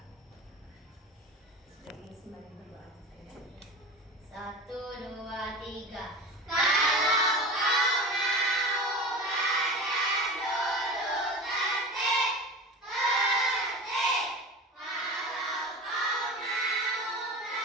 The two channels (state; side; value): normal; both; correlation 0.32